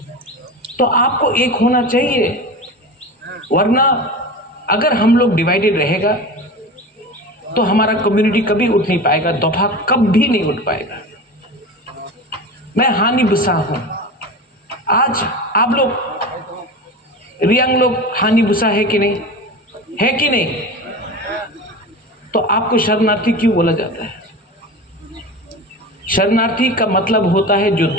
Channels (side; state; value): both; normal; correlation 0.30